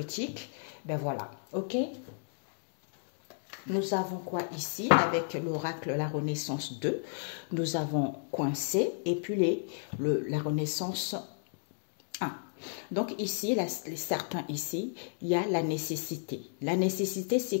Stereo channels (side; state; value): right; silent; digital silence